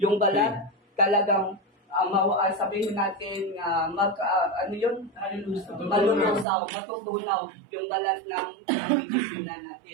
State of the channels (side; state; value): left; drops out; at 6.5 s